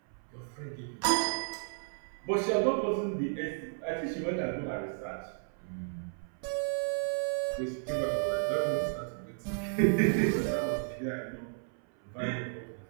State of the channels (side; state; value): left; silent; 56 dB below the other